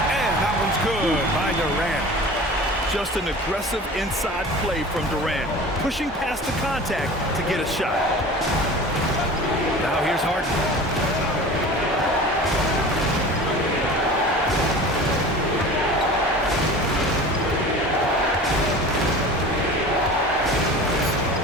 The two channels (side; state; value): both; normal; correlation 0.38